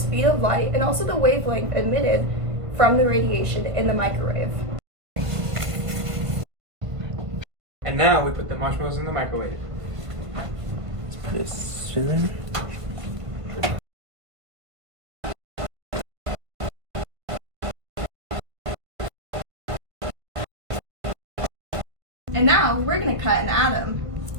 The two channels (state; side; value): late; left; 1.5 ms